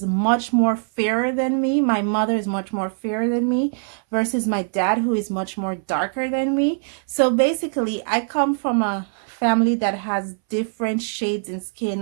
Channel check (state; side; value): silent; left; 62 dB below the other